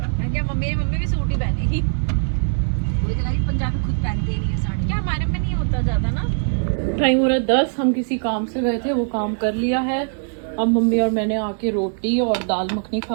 है। क्या मम्मी भी सूट ही पहनेगी? वही तो कह, पंजाबी खुद पहनते ही नहीं है साड़ी। क्या हमारे में नहीं होता ज्यादा ना। टाइम हो रहा है 10। हम किसी काम से गए थे, वो काम कर लिया है। अब मम्मी और मैंने आके रोटी और दाल मखनी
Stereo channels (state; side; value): silent; left; digital silence